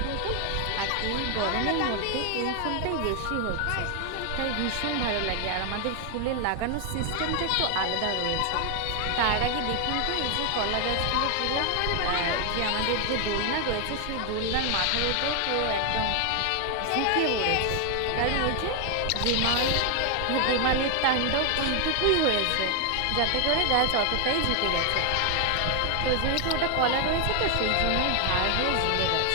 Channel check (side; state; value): both; different; correlation 0.00